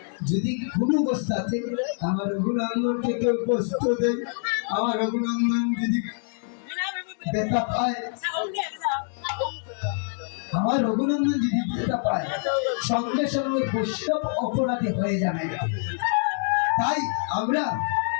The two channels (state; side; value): silent; right; 61 dB below the other